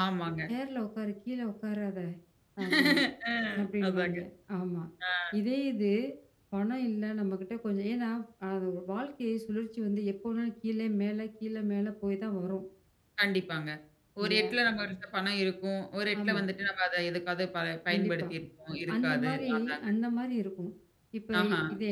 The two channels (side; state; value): both; identical; correlation 1.00